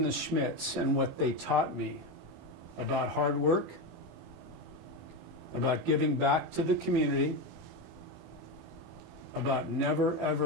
the Schmidts and what they taught me about hard work, about giving back to the community, about never,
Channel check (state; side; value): late; left; 24 ms